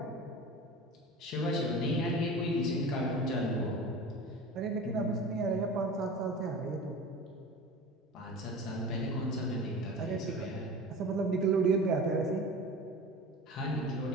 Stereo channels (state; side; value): normal; both; correlation 0.35